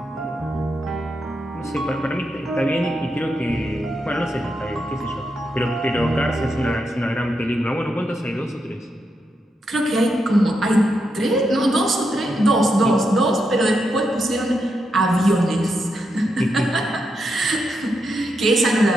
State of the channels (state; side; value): normal; both; correlation 0.83